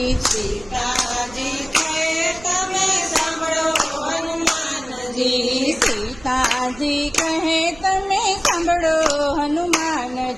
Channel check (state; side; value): noise; right; rumble, 21 dB below the sound